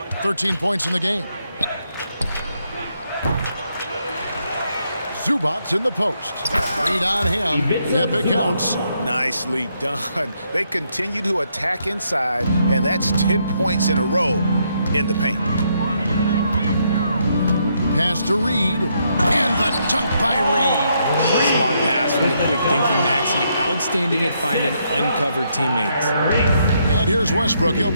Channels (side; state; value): both; inverted; correlation -0.76